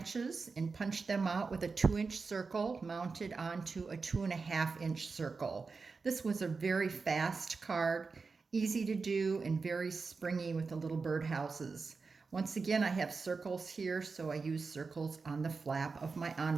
and punched them out with a 2-inch circle mounted onto a 2.5-inch circle. This was a very fast card, easy to do and very springy with the little birdhouses. Once again, I have circles here, so I use circles on the flap of my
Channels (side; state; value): left; quieter; 4.5 dB